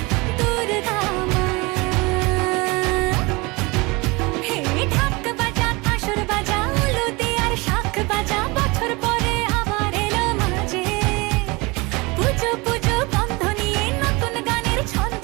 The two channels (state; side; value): quieter; left; 25.3 dB